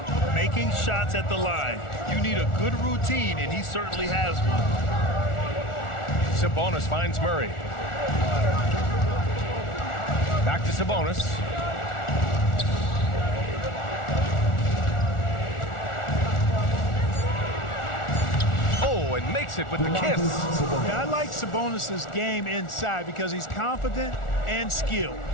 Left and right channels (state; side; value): late; right; 1.4 ms